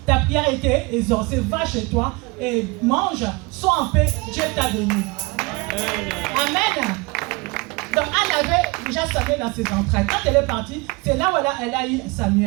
ta prière a été exaucée. Va chez toi et mange, sois en paix, Dieu t'a béni. Amen. Donc Anne avait déjà Samuel dans ses entrailles. Quand elle est partie, c'est là où elle a eu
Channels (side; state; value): left; quieter; 26.3 dB